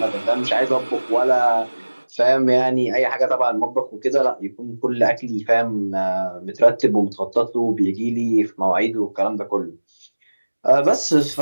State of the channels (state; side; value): inverted; both; correlation -1.00